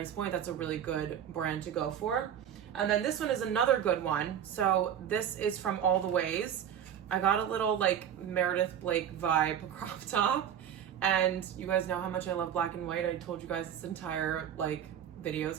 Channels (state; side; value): quieter; left; 9.4 dB